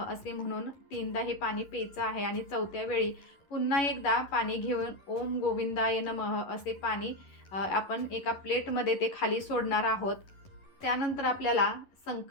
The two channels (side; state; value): right; late; 11 ms